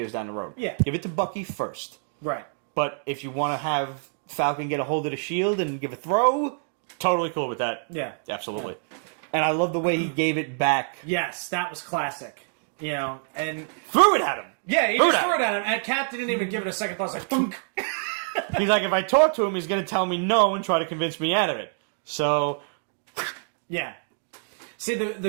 down the road. Yeah. Give it to Bucky first. Right. But if you want to have Falcon get a hold of the shield and give a throw, totally cool with that. Yeah. Absolutely. Yeah. And I love the way he gave it back. Yes, that was classic. And... Threw it at him. Yeah, he just threw it at him. And Captain didn't even give it a second thought. It's like, thunk. He's like, if I talk to him, he's going to tell me no and try to convince me out of it. So... Yeah. See,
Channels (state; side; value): silent; left; digital silence